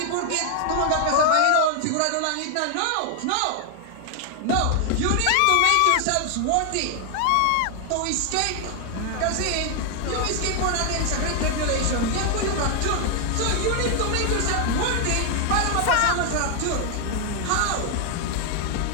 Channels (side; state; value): both; different; correlation 0.00